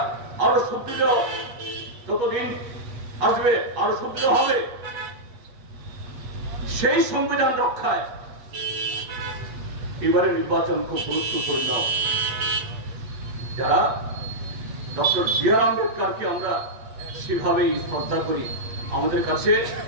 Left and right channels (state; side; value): late; left; 8.3 ms